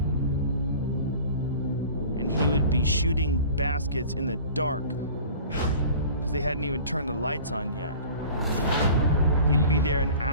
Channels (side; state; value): both; inverted; correlation -0.44